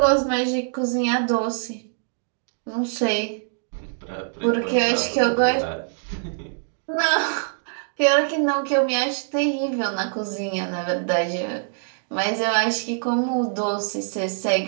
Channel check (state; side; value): silent; left; digital silence